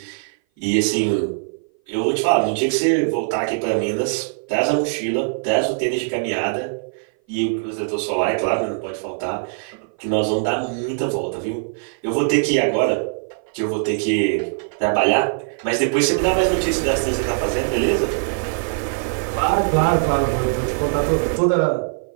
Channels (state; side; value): silent; left; 58 dB below the other